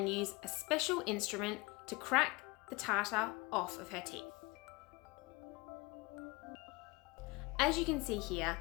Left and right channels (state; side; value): quieter; right; 25.0 dB